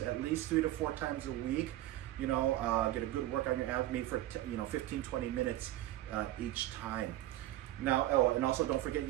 at least 3 to 4 times a week. Get a good work on your abdomen for 15-20 minutes each time. Now, and also don't forget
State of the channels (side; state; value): left; quieter; 15.0 dB